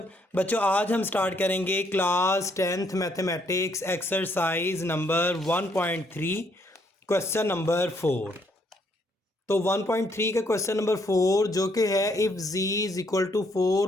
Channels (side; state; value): both; normal; correlation 0.70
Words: बच्चों, आज हम स्टार्ट करेंगे class 10th mathematics exercise number 1.3 question number 4। तो 1.3 का क्वेश्चन नंबर 4 जो कि है if z is equal to